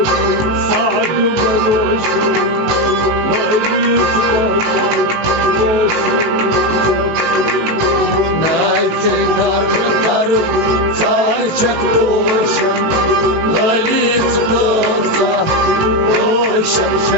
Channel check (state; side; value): late; left; 18 ms